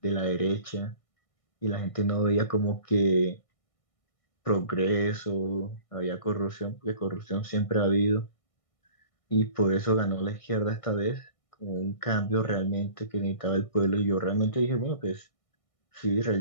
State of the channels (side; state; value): right; late; 1.6 ms